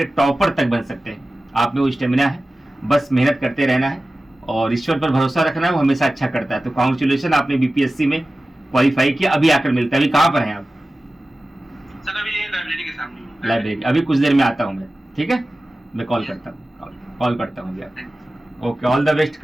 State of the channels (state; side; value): normal; both; correlation 0.96